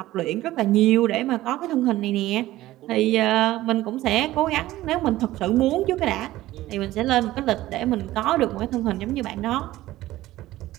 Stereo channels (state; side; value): quieter; left; 16.0 dB